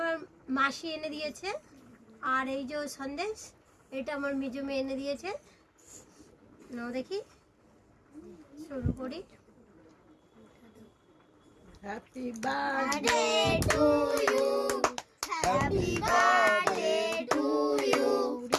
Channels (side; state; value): both; identical; correlation 1.00